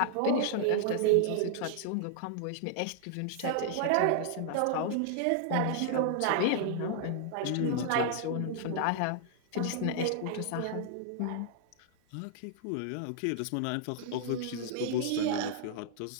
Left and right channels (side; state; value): both; different; correlation -0.01